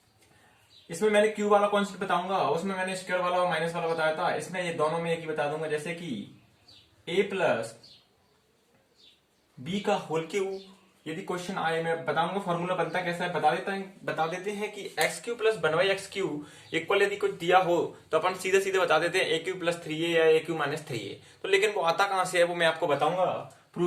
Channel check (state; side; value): identical; both; correlation 1.00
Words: इसमें मैंने क्यू वाला कॉन्सेप्ट बताऊंगा, उसमें मैंने स्क्वायर वाला और माइनस वाला बताया था। इसमें ये दोनों में एक ही बता दूंगा, जैसे कि ए प्लस बी का होल क्यूब। यदि क्वेश्चन आए, मैं बताऊंगा फॉर्मूला बनता कैसा है। बता देते हैं कि x cube plus one by X cube equal यदि कुछ दिया हो तो अपन सीधे सीधे बता देते हैं ए क्यू प्लस थ्री ए या ए क्यू माइनस थ्री ए। तो लेकिन वो आता कहां से है वो मैं आपको बताऊंगा